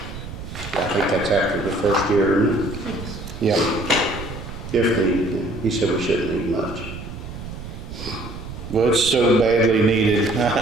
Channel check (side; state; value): right; noise; rumble, 11 dB below the sound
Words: I think that's after the first year, isn't it? Yep. If needed, he said we shouldn't need much. Well, it's so badly needed.